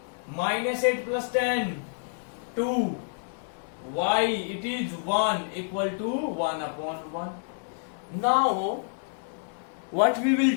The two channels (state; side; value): silent; right; digital silence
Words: minus 8 plus 10 2 y, it is 1 equal to 1 upon 1. Now what we will